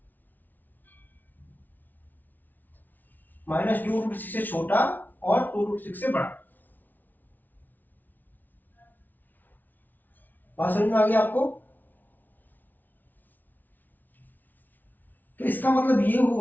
-2√6 से छोटा और 2√6 से बड़ा। बात समझ में आ गई आपको? तो इसका मतलब ये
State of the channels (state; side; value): late; right; 0.083 ms